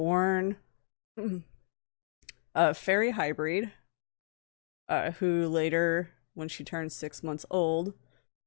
a fairy hybrid, who later, when she turned 6 months old,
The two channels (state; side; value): silent; right; digital silence